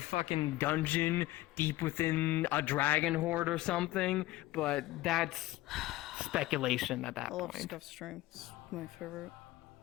dungeon deep within a dragon horde or something, but that's speculation at that I love point. Scuff Stream. It's my favorite.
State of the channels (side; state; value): right; quieter; 17.5 dB